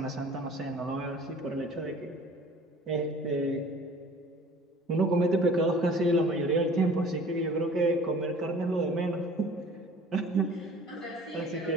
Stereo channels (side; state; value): both; normal; correlation 0.47